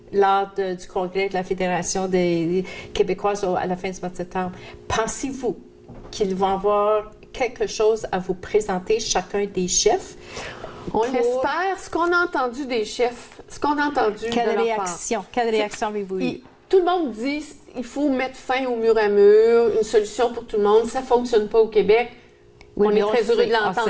lors du congrès de la Fédération des Québécoises à la fin du mois de septembre. Pensez-vous qu'ils vont avoir quelque chose à vous présenter, chacun des chefs? On l'espère. Ce qu'on a entendu des chefs, ce qu'on a entendu de leur part. Quelle réaction avez-vous eu? Tout le monde dit il faut mettre fin au mur à mur, une solution pour tout le monde. Ça ne fonctionne pas au Québec. Oui, on est très heureux de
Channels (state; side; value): identical; both; correlation 1.00